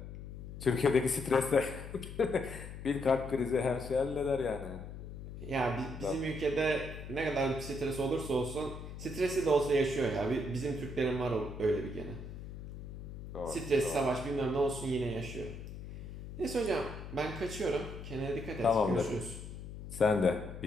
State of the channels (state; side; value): noise; left; hum, 10 dB below the sound